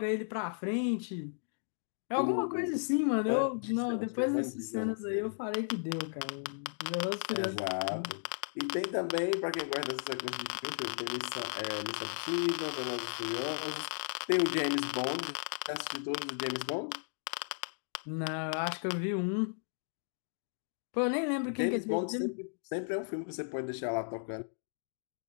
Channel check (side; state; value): right; silent; digital silence